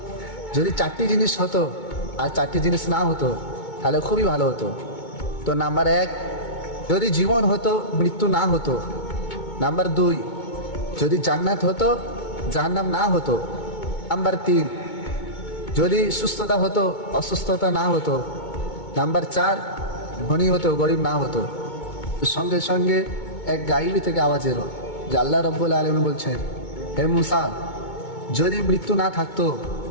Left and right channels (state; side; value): late; right; 2.2 ms